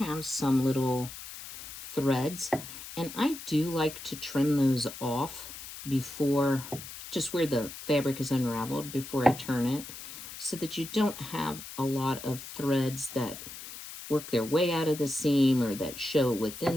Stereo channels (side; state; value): left; noise; hiss, 12 dB below the sound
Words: have some little threads, and I do like to trim those off before, just where the fabric is unraveled, before I turn it, so that you don't have a lot of threads that work their way out of the seam or that show